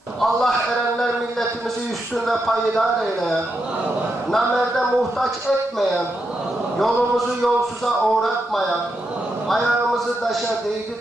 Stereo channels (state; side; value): normal; both; correlation 0.84